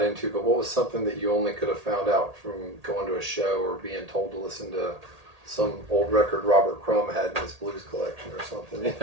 into, but what was something that you only could have found out from going to a show or being told to listen to some old record Robert Crumb had in his blues collection or something? You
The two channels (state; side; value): late; left; 1.8 ms